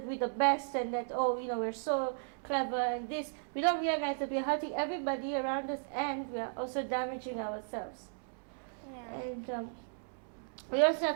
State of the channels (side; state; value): left; silent; digital silence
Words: we're the best and that, we're so clever and this, we don't realize that we're hurting everybody around us and we are also damaging ourselves. Yeah. And we also